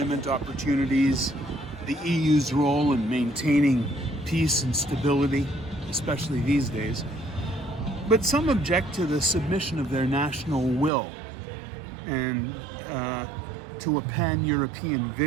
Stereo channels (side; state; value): left; drops out; at 10.9 s